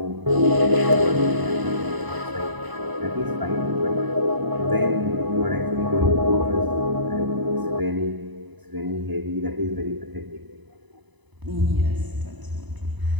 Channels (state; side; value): late; left; 1.0 ms